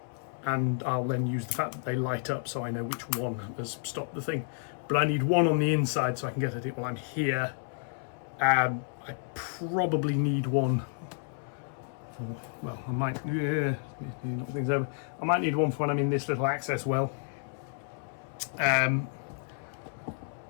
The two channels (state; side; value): silent; right; 57 dB below the other